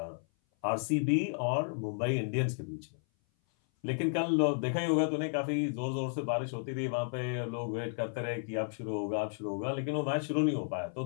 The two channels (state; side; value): silent; right; 56 dB below the other